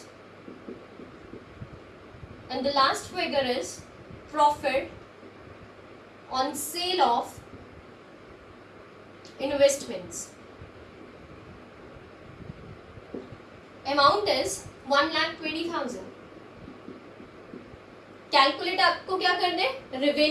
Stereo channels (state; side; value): identical; both; correlation 1.00